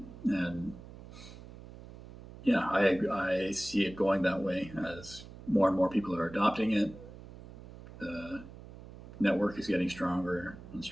And yeah, I see it going that way as more and more people are adopting it. The network is getting stronger and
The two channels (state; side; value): noise; right; hum, 16 dB below the sound